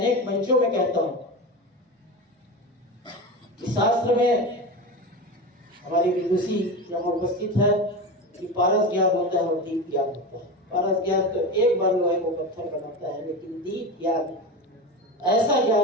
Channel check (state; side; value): normal; both; correlation 0.24